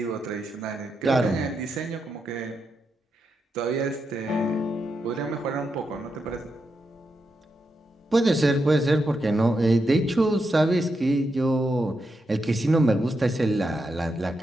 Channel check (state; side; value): normal; both; correlation 0.85